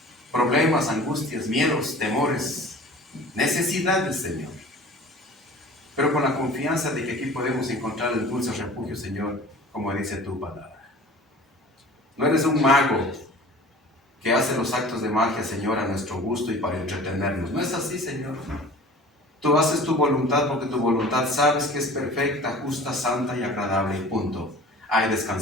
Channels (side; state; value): both; normal; correlation 0.43